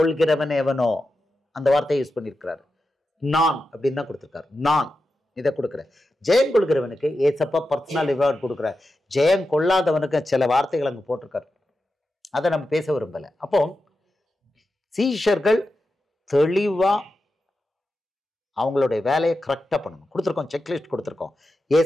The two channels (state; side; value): normal; both; correlation 0.90